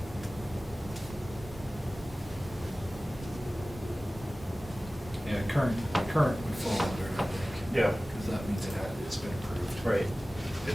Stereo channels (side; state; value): both; normal; correlation 0.97